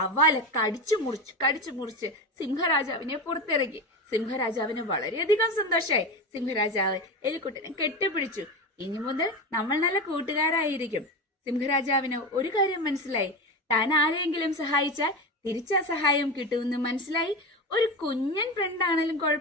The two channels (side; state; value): both; normal; correlation 0.22